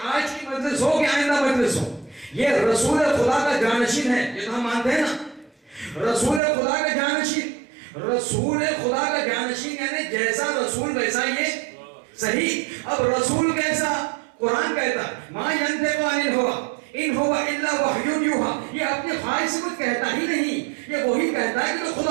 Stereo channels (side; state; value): left; drops out; at 6.4 s